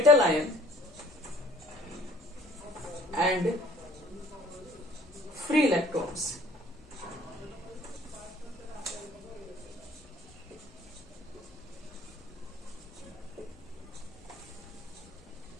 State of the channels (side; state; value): both; normal; correlation 0.54